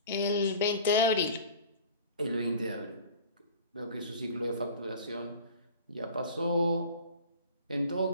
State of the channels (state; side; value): inverted; both; correlation -0.42